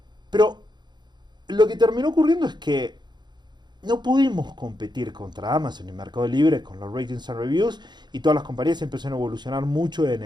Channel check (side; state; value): left; late; 0.21 ms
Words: Pero lo que terminó ocurriendo es que no pudimos competir contra Amazon y Mercado Libre con los ratings and reviews, y todas las compañías empezaron a evolucionar mucho en